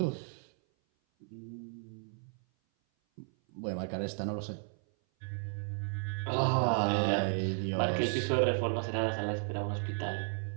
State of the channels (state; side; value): silent; left; 55 dB below the other